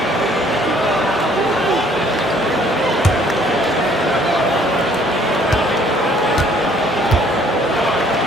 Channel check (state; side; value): normal; both; correlation 0.60